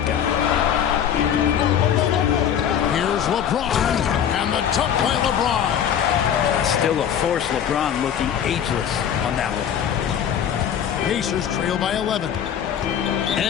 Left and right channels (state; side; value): quieter; right; 9.0 dB